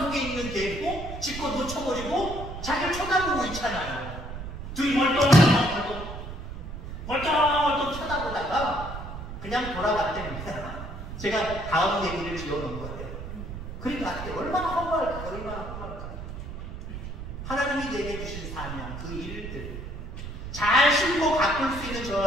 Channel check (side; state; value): right; noise; rumble, 9 dB below the sound